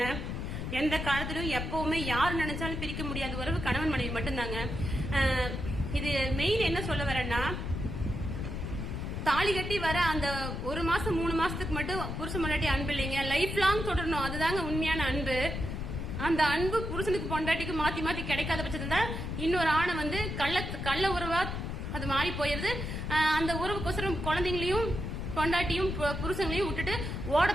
எந்த காலத்திலும் எப்பவுமே யார் நினைச்சாலும் பிரிக்க முடியாத உறவு கணவன் மனைவி மட்டும்தாங்க. இது மெயின் என்ன சொல்ல வரேன்னா, தாலி கட்டி வர அந்த 1 மாசம் 3 மாசத்துக்கு மட்டும் புருஷன் பொண்டாட்டி அன்பு இல்லைங்க, லைஃப் லாங் தொடரணும். அதுதாங்க உண்மையான அன்பு. அந்த அன்பு புருஷனுக்கு பொண்டாட்டிக்கு மாத்தி கிடைக்காத பட்சத்துல இன்னொரு ஆணை கள்ள உறவா அது மாறி போயிருது. அந்த உறவுக்கோசரம் குழந்தைங்களையும் பொண்டாட்டியும் புருஷங்களையும் விட்டுட்டு ஓட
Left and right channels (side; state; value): left; noise; rumble, 4 dB below the sound